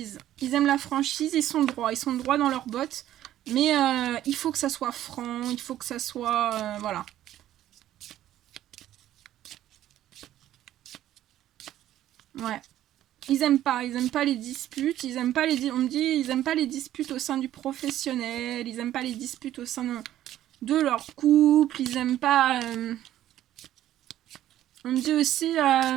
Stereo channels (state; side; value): quieter; left; 12.8 dB